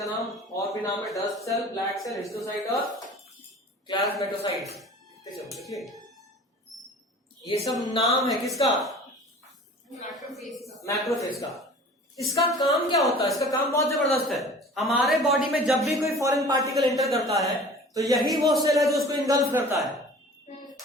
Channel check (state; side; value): normal; both; correlation 0.44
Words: नाम, और भी नाम है dust cell, black cell, histiocyte और प्लाज्मेटोसाइट्स। चलो देखिए, ये सब नाम है किसका? मैक्रोफेज का। इसका काम क्या होता है? इसका काम बहुत जबरदस्त है। हमारे बॉडी में जब भी कोई फॉरेन पार्टिकल एंटर करता है तो यही वो सेल है जो उसको इंगल्फ करता है,